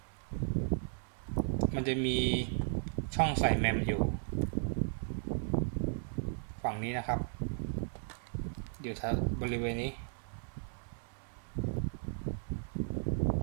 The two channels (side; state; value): left; silent; 54 dB below the other